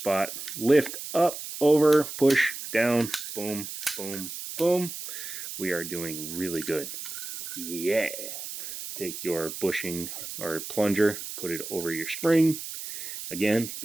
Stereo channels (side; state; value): right; noise; hiss, 8 dB below the sound